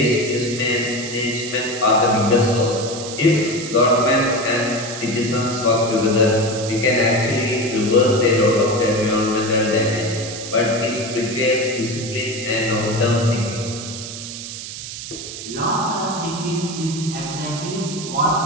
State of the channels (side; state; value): right; noise; hiss, 9 dB below the sound